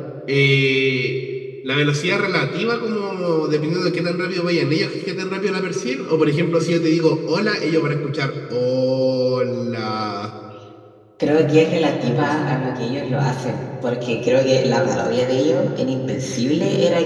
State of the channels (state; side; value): identical; both; correlation 1.00